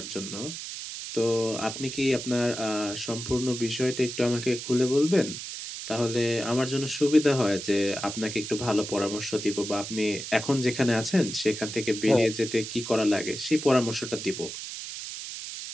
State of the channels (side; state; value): right; noise; hiss, 8 dB below the sound